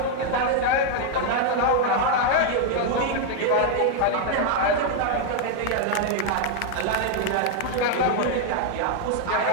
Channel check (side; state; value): both; different; correlation 0.00